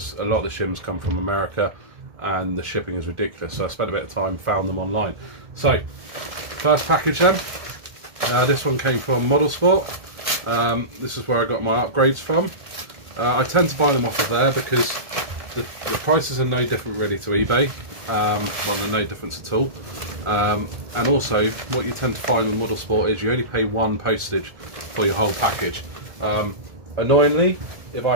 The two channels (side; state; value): left; late; 1.7 ms